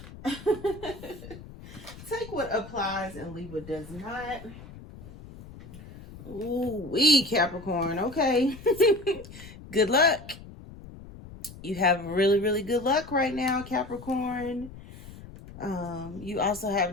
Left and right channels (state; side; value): noise; left; rumble, 16 dB below the sound